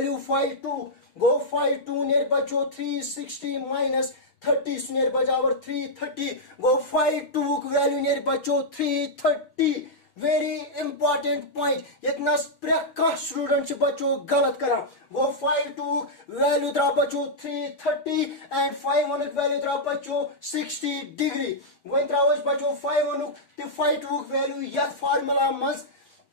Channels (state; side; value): late; right; 6.4 ms